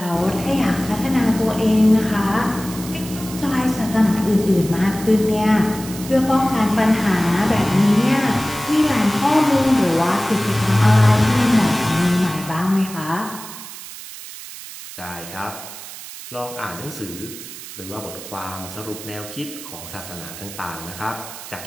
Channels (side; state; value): right; noise; hiss, 13 dB below the sound